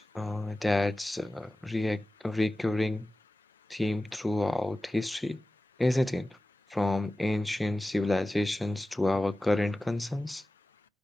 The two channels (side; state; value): both; normal; correlation 0.96